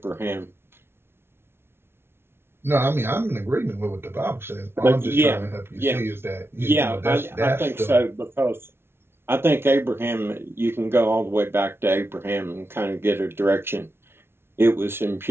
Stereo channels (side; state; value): left; late; 0.12 ms